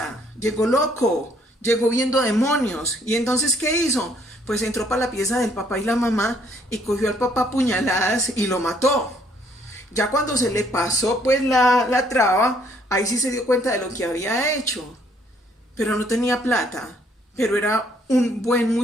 llegó loco, llegó viendo demonios. Y entonces, ¿qué hizo? pues entró para la pieza del papá y la mamá y cogió al papá a puñaladas y lo mató. Ya cuando se le pasó pues la traba, ahí sí se dio cuenta de lo que había hecho, pero no tenía plata, pero era un buen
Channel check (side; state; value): both; normal; correlation 0.66